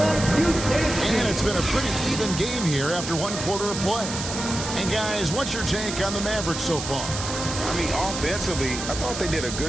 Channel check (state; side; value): noise; right; hiss, 6 dB below the sound